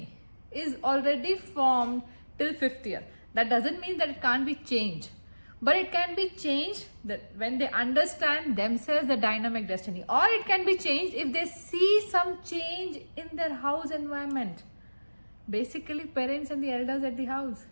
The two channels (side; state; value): both; inverted; correlation -1.00